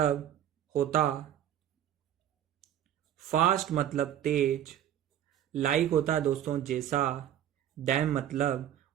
होता। फास्ट मतलब तेज। लाइक होता है दोस्तों जैसा। दैम मतलब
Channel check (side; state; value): left; quieter; 10.9 dB